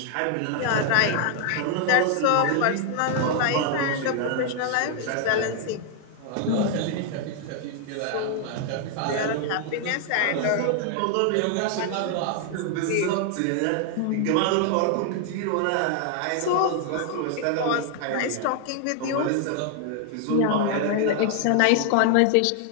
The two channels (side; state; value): both; different; correlation 0.00